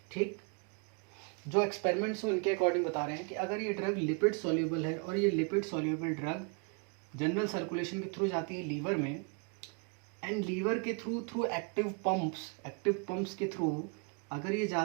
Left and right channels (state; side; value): quieter; left; 36.8 dB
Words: ठीक, जो एक्सपेरिमेंट्स उनके अकॉर्डिंग बता रहे हैं कि अगर ये ड्रग लिपिड सॉल्युबल है और ये lipid soluble drug general circulation के थ्रू जाती है लीवर में, एंड लीवर के थ्रू एक्टिव पंप्स के थ्रू अगर ये